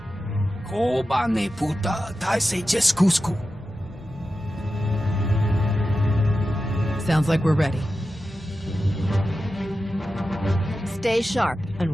Koba ne puta taise jeskusku. Sounds like we're ready. Stay sharp and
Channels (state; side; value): normal; both; correlation 0.92